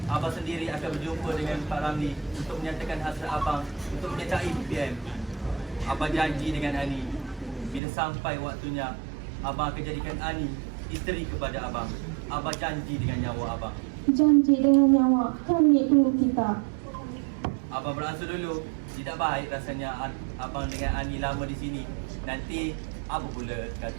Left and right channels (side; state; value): left; drops out; at 7.8 s